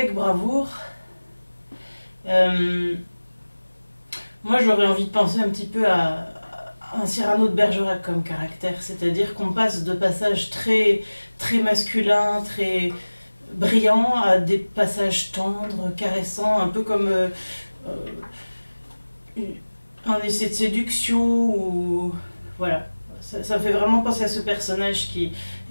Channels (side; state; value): both; inverted; correlation -1.00